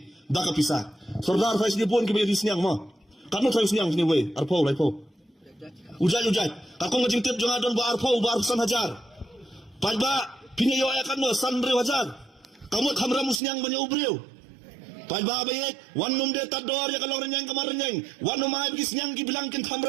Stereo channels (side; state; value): left; drops out; at 13.4 s